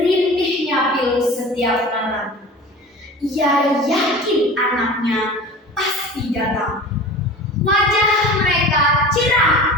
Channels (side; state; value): both; normal; correlation 0.37